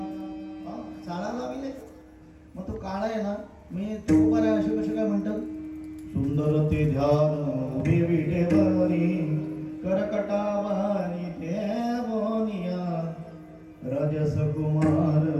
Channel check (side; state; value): both; identical; correlation 1.00